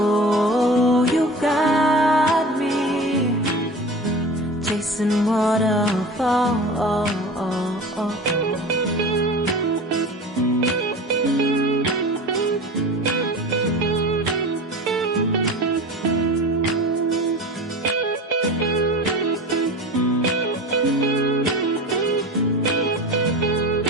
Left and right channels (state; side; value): normal; both; correlation 0.34